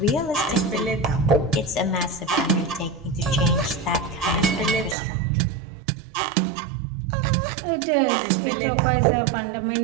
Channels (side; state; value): left; drops out; at 5.0 s